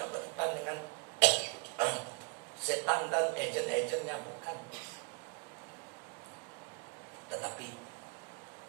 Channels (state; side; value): quieter; left; 34.9 dB